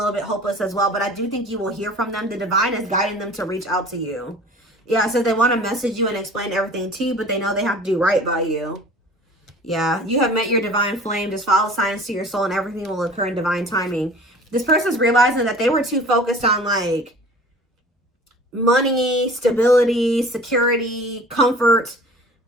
bit hopeless as well. But I do think you will hear from them. The divine is guiding them to reach out to you. Yeah, so they want to message you and explain everything to you, but they know they have to do right by you. Yeah, you have met your divine flame. Just follow signs to your soul and everything will occur in divine timing. This person's realizing that they were too focused on like money, stability, security, comfort,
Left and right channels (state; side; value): normal; both; correlation 0.44